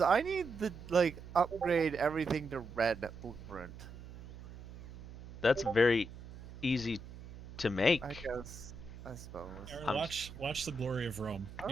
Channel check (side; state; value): right; noise; hum, 14 dB below the sound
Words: I need to like upgrade everything to red blueprint. That's very easy to make. I guess. I suppose. Aaron, watch The Glory of Rome.